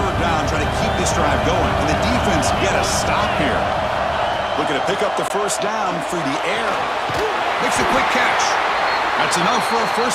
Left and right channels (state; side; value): identical; both; correlation 1.00